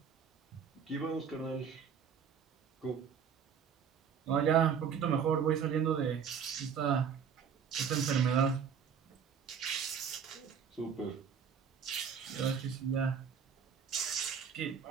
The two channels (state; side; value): quieter; left; 7.1 dB